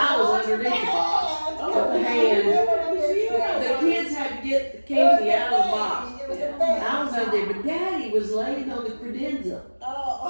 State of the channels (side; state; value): both; inverted; correlation -1.00